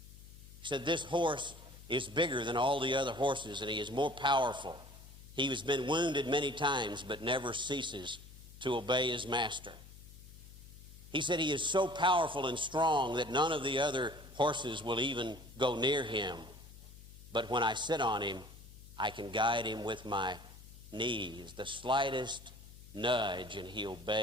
He said, this horse is bigger than all the other horses, and he is more powerful. He has been wounded many times, but never ceases to obey his master. He said he is so powerful and strong that none of the other horses will even go near him. But when I sit on him, I can guide him with my knees. The slightest nudge, and he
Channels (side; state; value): left; noise; hum, 18 dB below the sound